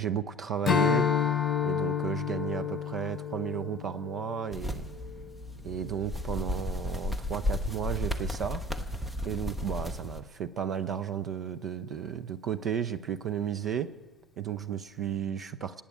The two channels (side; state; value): both; normal; correlation 0.41